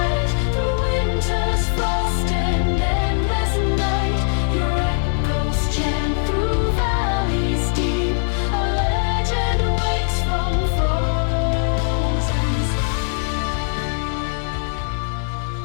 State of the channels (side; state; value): right; silent; digital silence